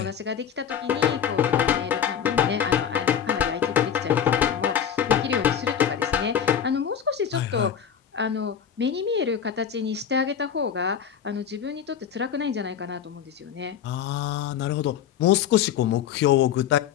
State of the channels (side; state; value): right; quieter; 8.6 dB